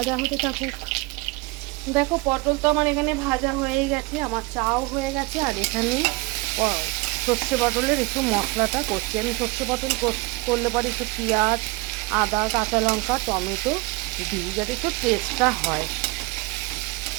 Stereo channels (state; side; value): quieter; left; 23.9 dB